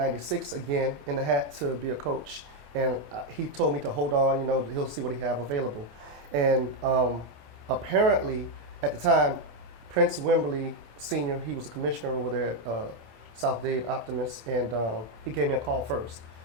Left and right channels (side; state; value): left; late; 26 ms